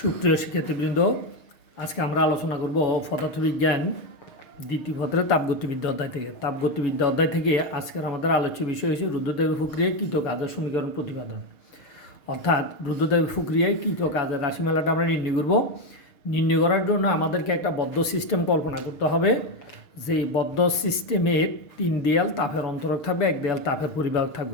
শিক্ষার্থীবৃন্দ, আজকে আমরা আলোচনা করব পদার্থবিজ্ঞান দ্বিতীয় পত্রের তাপগতিবিদ্যা অধ্যায় থেকে। তাপগতিবিদ্যা অধ্যায় থেকে আজকের আমাদের আলোচ্য বিষয় হচ্ছে রুদ্রদেবী প্রক্রিয়ায় কৃত কাজের সমীকরণ প্রতিপাদন। অর্থাৎ রুদ্রদেবী প্রক্রিয়ায় কৃত কাজের রাশিমালাটা আমরা নির্ণয় করব। নির্ণয় করার জন্য আমাদেরকে একটা বদ্ধ সিস্টেম কল্পনা করতে হবে, যে বদ্ধ সিস্টেমের 3 দেয়াল তাপের অন্তরক থাকবে, 1 দেয়াল তাপের পরিবাহক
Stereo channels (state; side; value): late; right; 6.6 ms